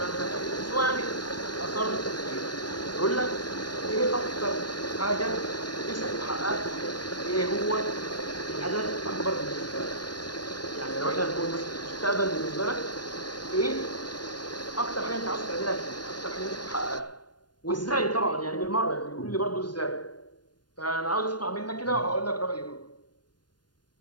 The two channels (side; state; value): right; late; 0.70 ms